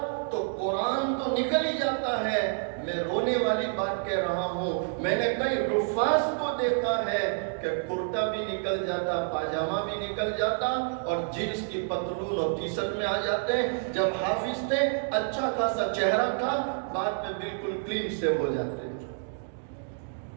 تو قرآن تو نکل ہی جاتا ہے. میں رونے والی بات کہہ رہا ہوں, میں نے کئی حفاظ کو دیکھا ہے کہ کرتا بھی نکل جاتا, پاجامہ بھی نکل جاتا اور جنس کی پتلون اور ٹی شرٹ میں آ جاتے. جب حافظ تھے اچھا خاصا چہرہ تھا, بعد میں بالکل کلین سے ہو جاتے.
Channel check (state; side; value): silent; left; digital silence